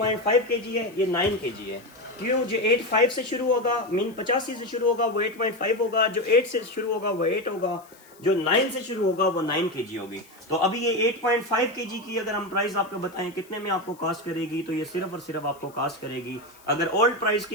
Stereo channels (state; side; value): noise; left; hiss, 26 dB below the sound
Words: kg है, ये 9 kg है। क्यों? जो 8.5 से शुरू होगा, मीन 85 से शुरू होगा वो 8.5 होगा, जो 8 से शुरू होगा वो 8 होगा, जो 9 से शुरू होगा वो 9 kg होगी। तो अभी ये 8.5 kg की अगर हम प्राइस आपको बताएं कितने में आपको कास्ट करेगी, तो ये सिर्फ और सिर्फ आपको कास्ट करेगी, अगर ओल्ड प्राइस